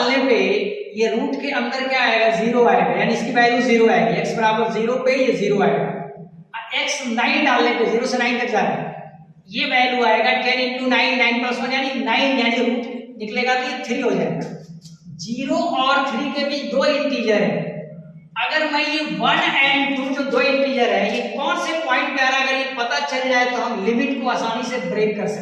पे ये रूट के अंदर क्या आएगा, जीरो आएगा, यानी इसकी वैल्यू जीरो आएगी। x बराबर जीरो पे ये जीरो आएगा। x 9 डालने पे 0 से 9 तक जा रहा है, ये वैल्यू आएगा 10 × 9, 9 + 1 यानी 9, यानी रूट निकलेगा तो ये 3 हो जाएगा। 0 और 3 के बीच दो इंटीजर है। अगर मैं ये 1 और 2 जो दो इंटीजर है, ये कौन से पॉइंट पे आ रहा है, अगर ये पता चल जाए तो हम लिमिट को आसानी से ब्रेक कर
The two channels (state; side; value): identical; both; correlation 1.00